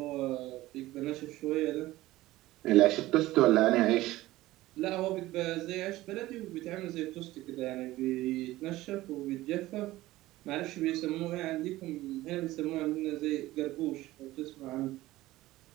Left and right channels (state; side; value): quieter; left; 17.1 dB